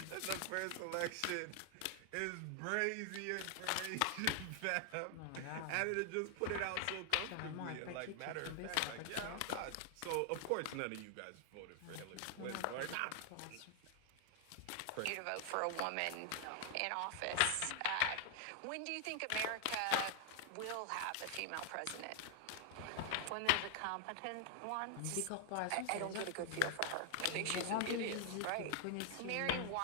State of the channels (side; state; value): both; different; correlation 0.00